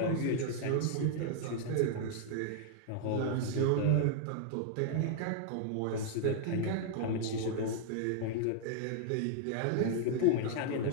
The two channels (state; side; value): different; both; correlation -0.01